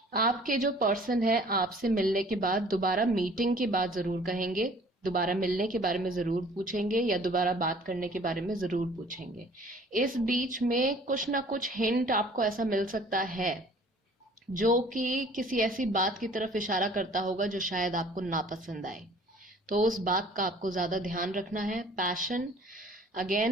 आपके जो पर्सन है आपसे मिलने के बाद, दोबारा मीटिंग के बाद जरूर कहेंगे, दोबारा मिलने के बारे में जरूर पूछेंगे या दोबारा बात करने के बारे में जरूर पूछेंगे। इस बीच में कुछ ना कुछ हिंट आपको ऐसा मिल सकता है जो कि किसी ऐसी बात की तरफ इशारा करता होगा जो शायद आपको नापसंद आए। तो उस बात का आपको ज्यादा ध्यान रखना है। पैशन,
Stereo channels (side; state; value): both; normal; correlation 0.52